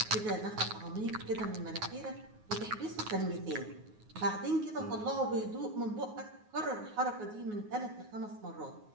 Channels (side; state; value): left; late; 9.4 ms